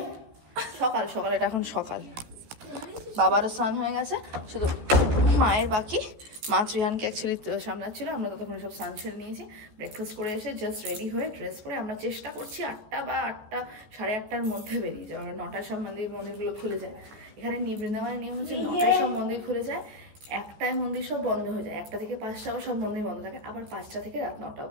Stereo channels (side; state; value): left; late; 15 ms